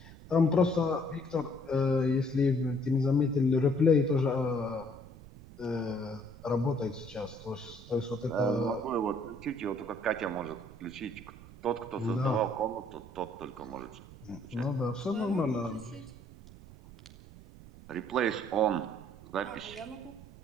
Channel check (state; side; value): noise; right; rumble, 18 dB below the sound